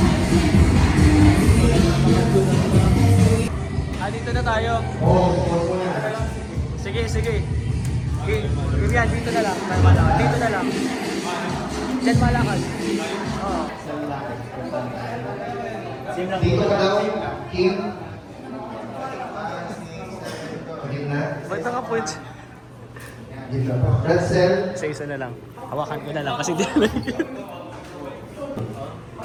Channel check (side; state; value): both; identical; correlation 1.00